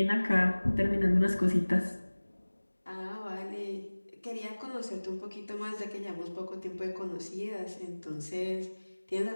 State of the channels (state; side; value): inverted; both; correlation -1.00